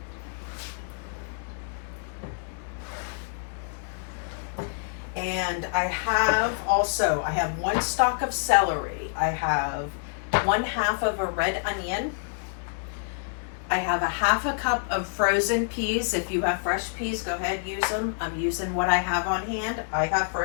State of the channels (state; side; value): silent; right; digital silence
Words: And I have one stalk of celery. I have 1/2 of a red onion. I have a 1/2 cup of frozen peas. If you have fresh peas, go ahead, use them. I'm using what I have on hand. I have